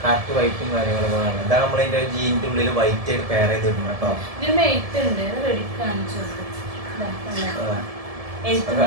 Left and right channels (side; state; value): left; late; 1.7 ms